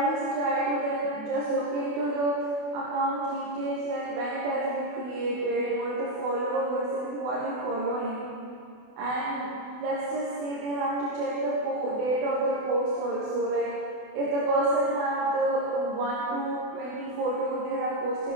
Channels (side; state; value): left; late; 28 ms